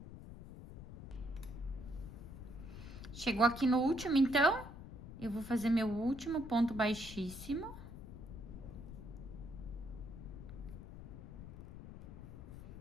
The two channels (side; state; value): left; noise; rumble, 11 dB below the sound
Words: Chegou aqui no último, então, eu vou fazer meu último ponto baixíssimo.